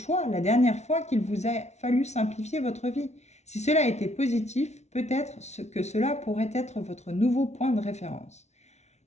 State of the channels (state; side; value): late; right; 0.32 ms